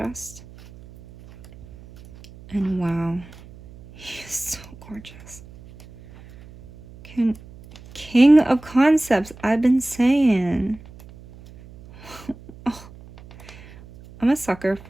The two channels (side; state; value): right; noise; hum, 20 dB below the sound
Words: And wow, he is so gorgeous. King of concepts, I've been saying. Oh, I'm a sucker